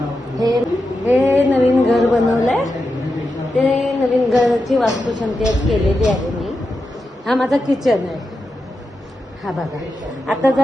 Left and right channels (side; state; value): both; normal; correlation 0.89